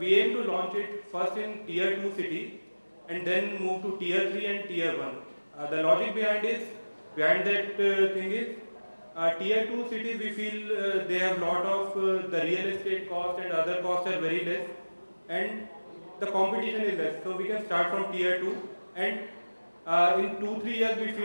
to launch it first in tier 2 cities and then move to tier 3 and tier 1. The logic behind that thing is tier 2 cities we feel they have lot of the real estate cost and other costs are very less and the competition is less. So we can start from tier 2 and in 2-3 years we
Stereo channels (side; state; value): both; inverted; correlation -1.00